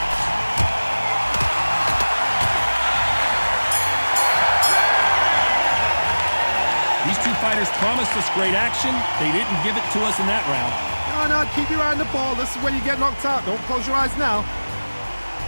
These two fighters promised us great action. They didn't give it to us in that round. No, keep your eye on the ball. This is when you get knocked out. Don't close your eyes now.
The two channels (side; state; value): both; inverted; correlation -1.00